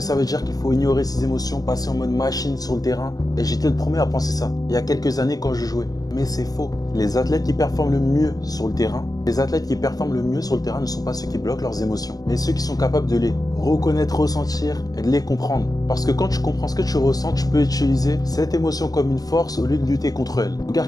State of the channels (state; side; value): late; right; 0.18 ms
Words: veut dire qu'il faut ignorer ses émotions, passer en mode machine sur le terrain. Et j'étais le premier à penser ça, il y a quelques années quand je jouais. Mais c'est faux. Les athlètes qui performent le mieux sur le terrain, ne sont pas ceux qui bloquent leurs émotions, mais ceux qui sont capables de les reconnaître, ressentir et de les comprendre. Parce que quand tu comprends ce que tu ressens, tu peux utiliser cette émotion comme une force au lieu de lutter contre elle.